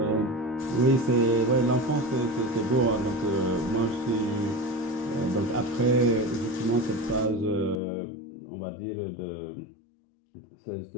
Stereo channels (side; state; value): right; drops out; at 7.8 s